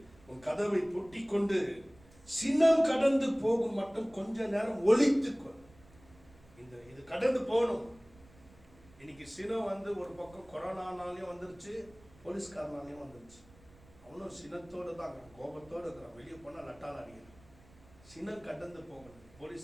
உன் கதவை பூட்டி கொண்டு சினம் கடந்து போகும் மட்டும் கொஞ்ச நேரம் ஒளித்துக்கொள். இது கடந்து போகணும். இன்னைக்கு சினம் ஒரு பக்கம் கொரோனானாலையும் வந்துருச்சு, போலீஸ்காரனாலையும் வந்துருச்சு. அவனும் சினத்தோடு தான் இருக்கிறான், கோபத்தோடு இருக்கிறான், வெளியே போனால் லட்டால் அடிக்கிறான். சினம் கடந்து போகணும்.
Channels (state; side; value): noise; right; rumble, 26 dB below the sound